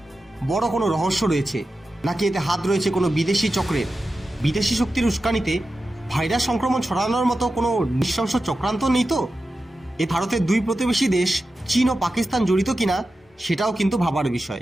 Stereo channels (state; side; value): normal; both; correlation 0.92